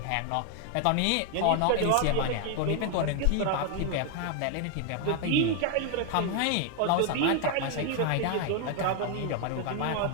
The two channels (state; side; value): different; both; correlation 0.00